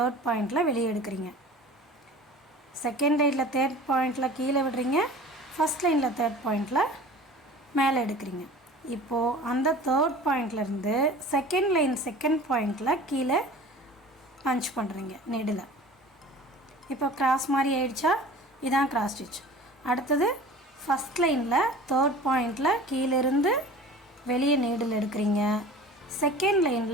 பாயிண்டில் வெளியே எடுக்கிறீங்க. செகண்ட் லைனில் தேர்ட் பாயிண்டில் கீழே விடுறீங்க, ஃபஸ்ட் லைனில் தேர்ட் பாயிண்டில் மேலே எடுக்கிறீங்க. இப்போது அந்த தேர்ட் பாயிண்ட்லேருந்து செகண்ட் லைன் செகண்ட் பாயிண்டில் கீழே பஞ்ச் பண்ணுறீங்க நீடில். இப்போ கிராஸ் மாதிரி ஆயிடுச்சா? இதான் கிராஸ் ஸ்டிச். அடுத்தது ஃபஸ்ட் லைனில் தேர்ட் பாயிண்டில் கீழேருந்து வெளியே நீடில் எடுக்கிறீங்க. செகண்ட்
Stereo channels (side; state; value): both; normal; correlation 0.41